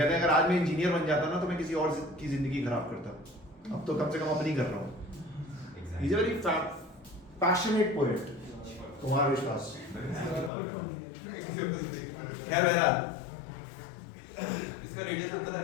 हैं अगर आज मैं इंजीनियर बन जाता ना तो मैं किसी और की जिंदगी खराब करता, अब तो कम से कम अपनी कर रहा हूँ। He is a very passionate poet, Kumar विश्वास। खैर बहरहाल, इसका रेडियस अंतर है।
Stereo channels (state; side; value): drops out; right; at 10.5 s